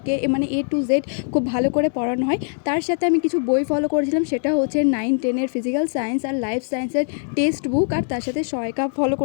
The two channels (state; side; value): silent; right; digital silence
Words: মানে এ টু জেড খুব ভালো করে পড়ানো হয়। তার সাথে আমি কিছু বই ফলো করেছিলাম, সেটা হচ্ছে 9-10-এর ফিজিক্যাল সায়েন্স আর লাইফ সায়েন্সের টেক্সট বুক, আর তার সাথে সহায়িকা ফলো